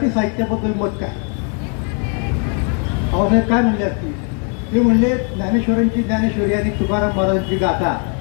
साहित्याबद्दल मत काय? बाबासाहेब काय म्हणले असतील? ते म्हणले ज्ञानेश्वरांची ज्ञानेश्वरी आणि तुकाराम महाराजांची गाथा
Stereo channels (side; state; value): right; quieter; 39.9 dB